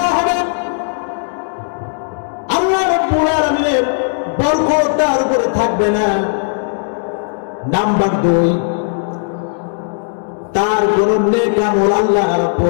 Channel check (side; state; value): right; silent; 69 dB below the other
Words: হবে। আল্লাহ রাব্বুল আলামিনের বরকত তার উপরে থাকবে না। নাম্বার 2, তার কোন নেক আমল আল্লাহ